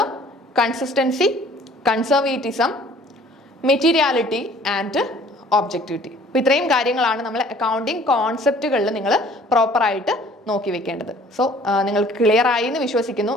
consistency, conservatism, materiality and objectivity. അപ്പോൾ ഇത്രയും കാര്യങ്ങളാണ് നമ്മൾ accounting കോൺസെപ്റ്റുകളിൽ നിങ്ങൾ പ്രോപ്പറായിട്ട് നോക്കി വെക്കേണ്ടത്. സോ നിങ്ങൾക്ക് clear ആയി എന്ന് വിശ്വസിക്കുന്നു.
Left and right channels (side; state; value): both; normal; correlation 0.54